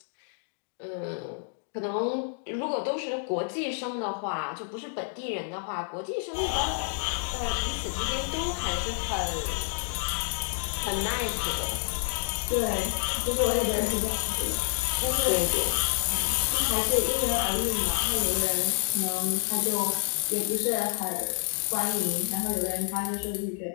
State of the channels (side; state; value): right; silent; digital silence